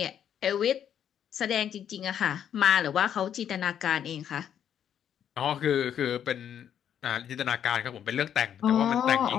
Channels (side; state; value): right; quieter; 9.3 dB